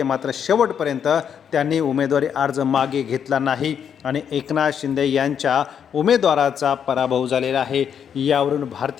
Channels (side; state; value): right; quieter; 8.1 dB